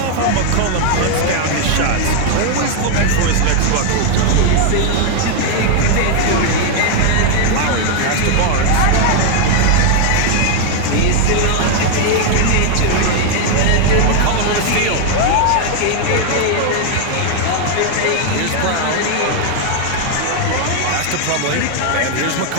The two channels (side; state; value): both; different; correlation 0.00